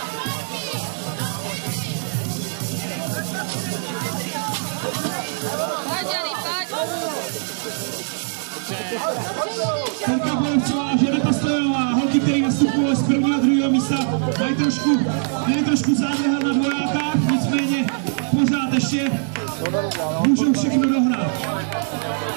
Terka Borovcová a Žaneta Stojanová, holky, které nastupují z prvního a druhého místa, mají trošku zádrhel na dvojákách, nicméně pořád ještě můžou všechno dohnat.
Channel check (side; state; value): left; silent; digital silence